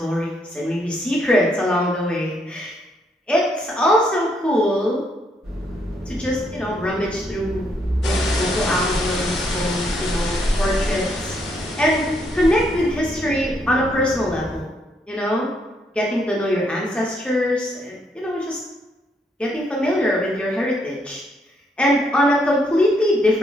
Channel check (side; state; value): both; normal; correlation 0.73